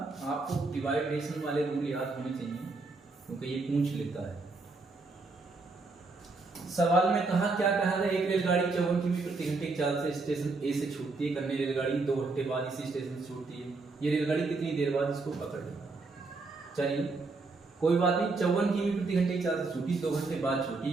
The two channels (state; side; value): quieter; left; 3.7 dB